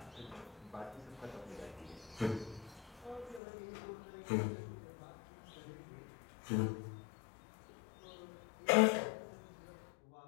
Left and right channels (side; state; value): right; drops out; at 3.4 s